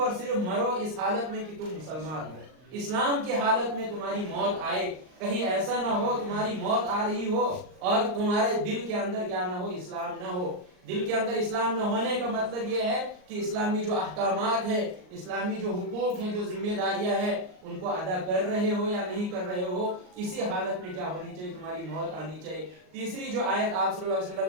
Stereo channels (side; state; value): left; late; 39 ms